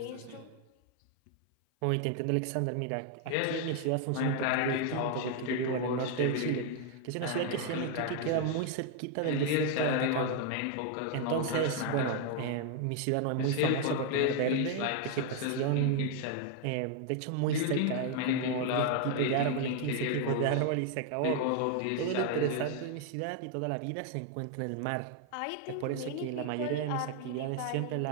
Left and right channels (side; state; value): both; different; correlation 0.01